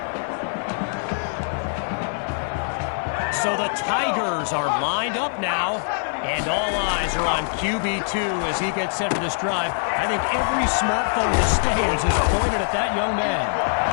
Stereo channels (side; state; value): right; silent; digital silence